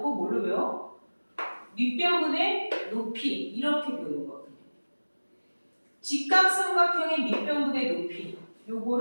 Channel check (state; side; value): inverted; both; correlation -1.00